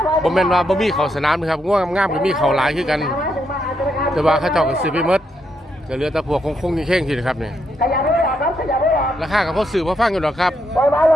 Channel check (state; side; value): normal; both; correlation 0.79